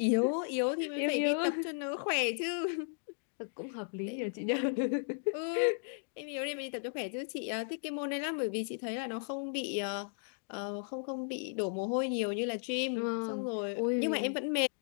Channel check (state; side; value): silent; right; digital silence